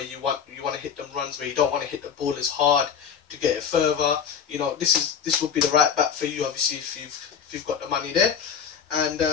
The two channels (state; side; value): quieter; right; 7.4 dB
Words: you want to hit them runs, where you don't want to hit the ball as hard to get it further, this would be the right bat for you, obviously, if you've got the money there. And